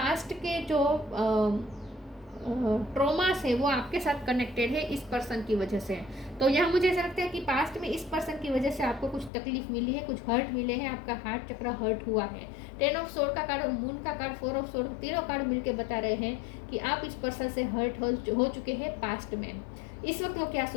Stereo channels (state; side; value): drops out; right; at 9.3 s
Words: के जो ट्रॉमास है वो आपके साथ कनेक्टेड है इस पर्सन की वजह से। तो यहाँ मुझे ऐसा लगता है कि पास्ट में इस पर्सन की वजह से आपको कुछ तकलीफ मिली है, कुछ हर्ट मिले हैं, आपका हार्ट चक्र हर्ट हुआ है। 10 ऑफ सोर्ड का कार्ड और मून का कार्ड, 4 ऑफ सोर्ड, तीनों कार्ड मिलके बता रहे हैं कि आप इस पर्सन से हर्ट हो चुके हैं पास्ट में। इस वक्त वो क्या